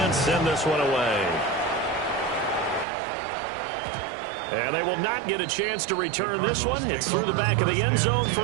send this one away. And they will not get a chance to return this one. It's through the back of the end zone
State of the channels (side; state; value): left; drops out; at 2.9 s